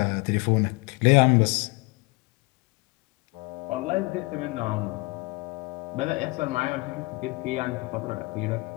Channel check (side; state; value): right; quieter; 25.8 dB